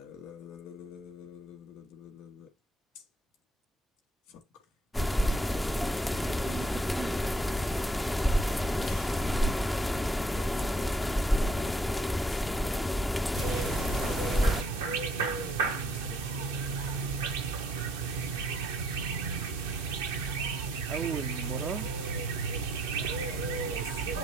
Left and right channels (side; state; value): both; normal; correlation 0.67